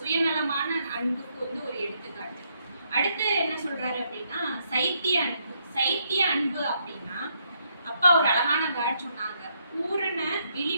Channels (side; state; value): both; inverted; correlation -0.75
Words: அன்புக்கு வந்து ஒரு எடுத்துக்காட்டு. அடுத்து என்ன சொல்றாரு அப்படின்னா சைத்திய அன்பு. சைத்திய அன்பு அப்படின்னா அப்பா ஒரு அழகான வேர்ட் சொன்னாங்க, பூரண